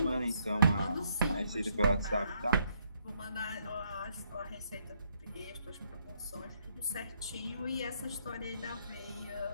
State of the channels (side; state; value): both; inverted; correlation -0.73